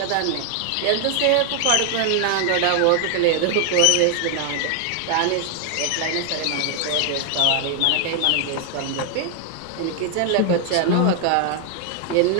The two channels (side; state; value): both; different; correlation 0.00